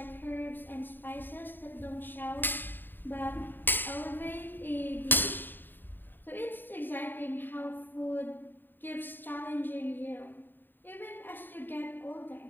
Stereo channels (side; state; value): right; late; 0.093 ms